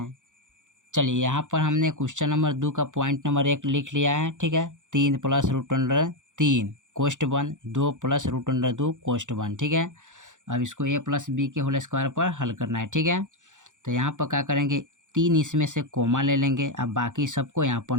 चलिए यहाँ पर हमने क्वेश्चन नंबर 2 का पॉइंट नंबर 1 लिख लिया है। ठीक है, 3 + √3 कोष्ठ बंद 2 + √2 कोष्ठ बंद। ठीक है, अब इसको a + b के होल स्क्वायर पर हल करना है। ठीक है, तो यहाँ पर क्या करेंगे, 3 इसमें से कोमा ले लेंगे। अब बाकी सबको यहाँ पर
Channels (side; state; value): left; late; 0.86 ms